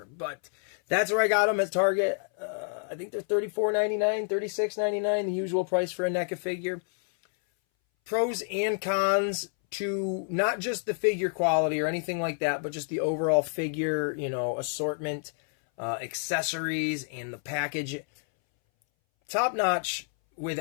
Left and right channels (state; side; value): silent; right; 59 dB below the other